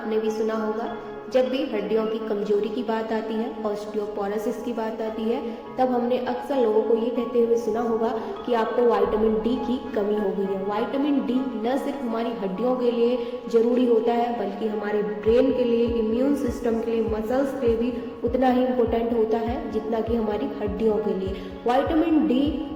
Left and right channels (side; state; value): both; identical; correlation 1.00